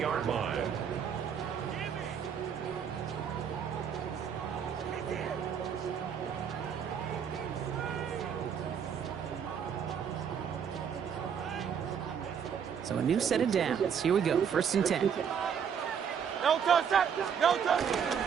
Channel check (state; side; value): quieter; left; 7.6 dB